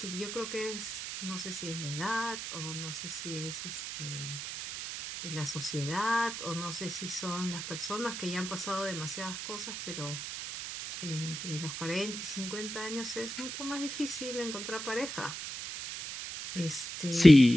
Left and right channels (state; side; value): noise; right; hiss, 6 dB below the sound